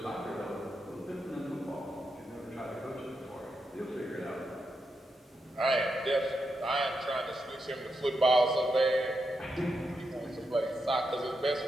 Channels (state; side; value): normal; both; correlation 0.85